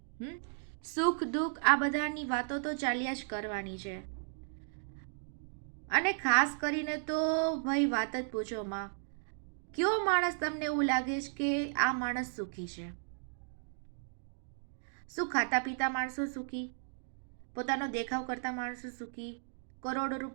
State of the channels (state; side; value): silent; left; digital silence